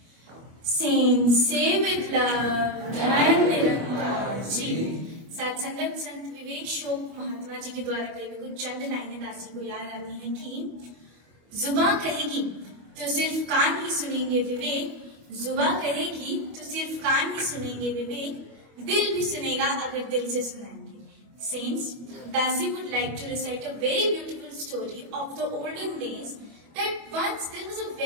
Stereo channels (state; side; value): late; left; 25 ms